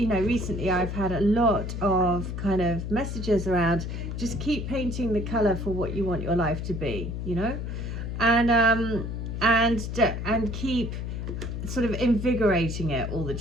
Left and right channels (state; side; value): noise; left; hum, 5 dB below the sound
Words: I've had a lot of kind of messages around just keep painting the color for what you want your life to be, and and keep sort of invigorating it all the